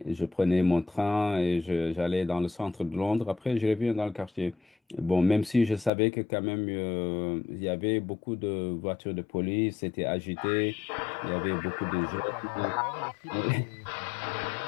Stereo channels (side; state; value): right; drops out; at 5.9 s